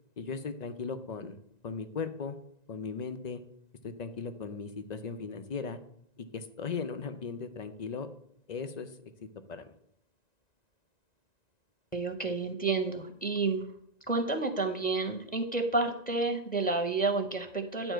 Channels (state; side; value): late; right; 1.9 ms